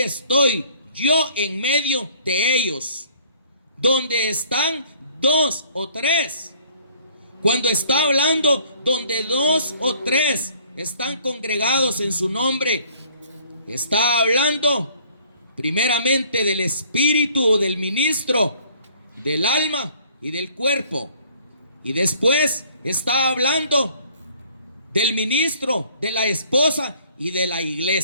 yo en medio de ellos. Donde están 2 o 3. Cuando está hablando donde 2 o 3 están congregados en su nombre, está hablando primeramente del espíritu o del ministro, del alma y del cuerpo. Y después está hablando del ministro, de la esposa y de la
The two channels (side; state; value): both; inverted; correlation -0.58